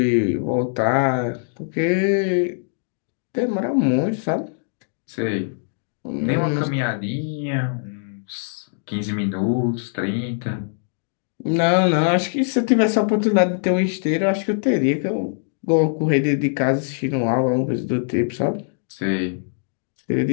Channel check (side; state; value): right; silent; digital silence